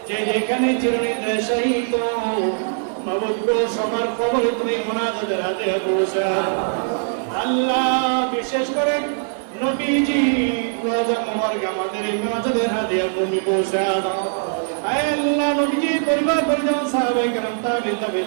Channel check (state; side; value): silent; left; digital silence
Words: যে যেখানে চিরনির্দেশায়িত মাবুদ সবার খবরে তুমি মুনাজাতের হাতে পৌঁছা। আল্লাহ বিশেষ করে নবীজি রোজা মোবারক আমাদের এই মুনাজাতের হাতে তুমি পৌঁছা দাও। আয় আল্লাহ নবীজি পরিবার পরিজন, সাহাবায়ে কেরাম, তাবিঈন,